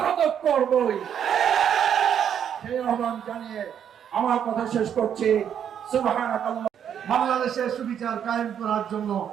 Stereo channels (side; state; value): left; quieter; 8.8 dB